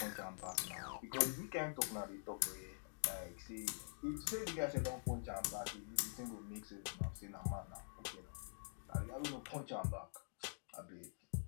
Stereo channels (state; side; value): silent; right; digital silence